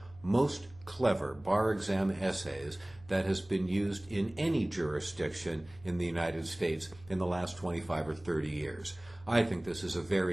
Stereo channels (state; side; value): noise; right; hum, 23 dB below the sound